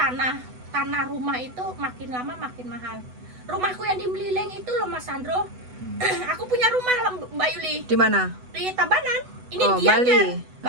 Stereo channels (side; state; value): left; late; 8.0 ms